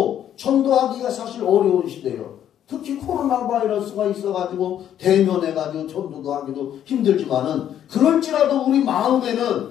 전도하기가 사실 어려운 시대예요. 특히 코로나 바이러스가 있어가지고 대면해가지고 전도도 하기도 힘들지만은, 그럴지라도 우리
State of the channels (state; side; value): quieter; right; 10.4 dB